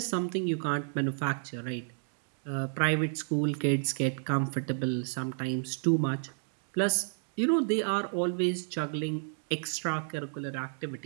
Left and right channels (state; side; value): silent; left; digital silence